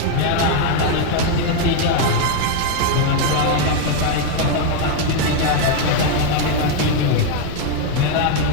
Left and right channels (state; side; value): different; both; correlation 0.01